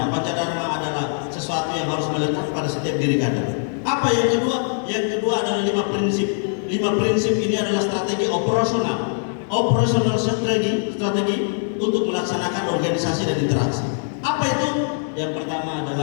Pancadharma adalah sesuatu yang harus melekat pada setiap diri kader. Apa yang kedua? Yang kedua adalah 5 prinsip. 5 prinsip ini adalah strategi operasional. Operational strategi untuk melaksanakan organisasi dan interaksi. Apa itu? Yang pertama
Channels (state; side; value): silent; right; 64 dB below the other